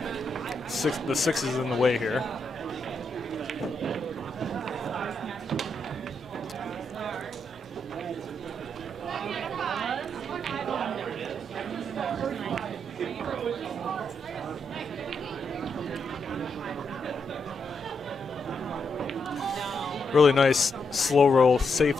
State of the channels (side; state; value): both; normal; correlation 0.81